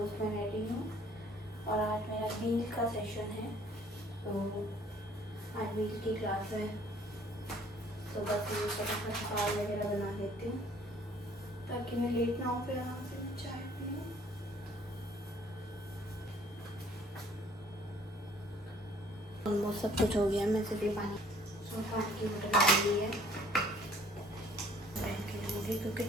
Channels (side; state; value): both; normal; correlation 0.57